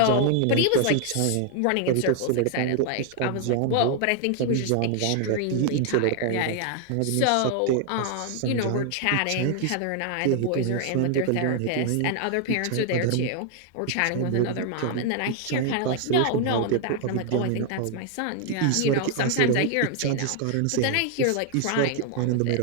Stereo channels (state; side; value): different; both; correlation 0.00